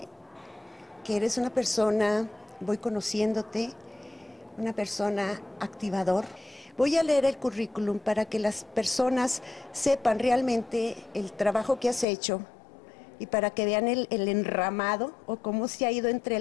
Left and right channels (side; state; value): right; drops out; at 12.1 s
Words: eres una persona, voy conociéndote, una persona activador. Voy a leer el currículum para que las personas sepan realmente el trabajo que has hecho y para que vean el enramado o cómo se ha ido